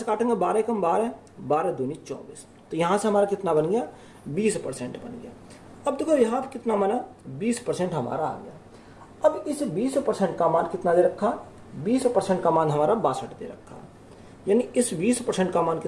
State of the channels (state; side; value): identical; both; correlation 1.00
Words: काटेंगे 12 कम 12, 12 दूनी 24, तो यहाँ से हमारा कितना बन गया 20% बन गया। अब देखो यहाँ पर कितना माना 20% हमारा आ गया। अब इस 20% का मान कितना दे रखा, 20% का मान हमारा 62 दे रखा, यानी इस 20% का मान